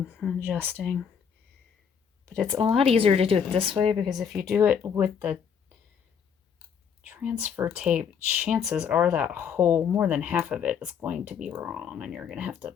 and adjusting. But it's a lot easier to do it this way, because if you do it with the transfer tape, chances are that whole, more than half of it is going to be wrong, and you're going to have to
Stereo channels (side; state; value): right; quieter; 7.2 dB